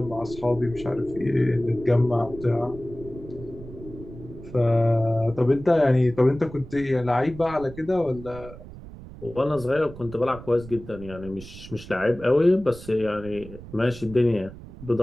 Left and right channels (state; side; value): noise; right; rumble, 16 dB below the sound